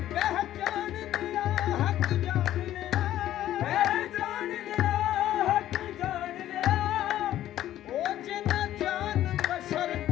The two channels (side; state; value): right; quieter; 12.8 dB